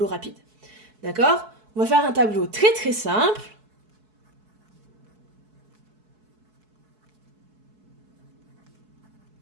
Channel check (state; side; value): late; left; 4.7 ms